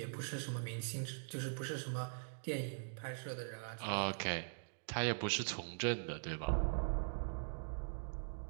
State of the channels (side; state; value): left; silent; digital silence